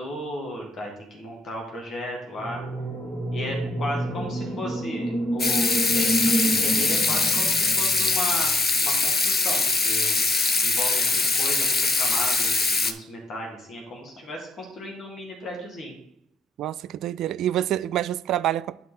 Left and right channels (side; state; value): both; normal; correlation 0.65